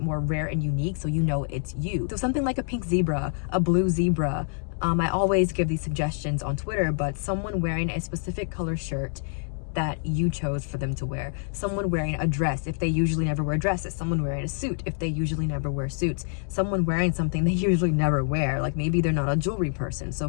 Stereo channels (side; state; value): right; silent; 58 dB below the other